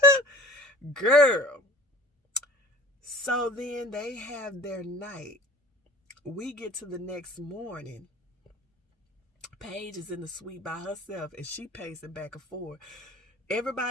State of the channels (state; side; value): normal; both; correlation 0.43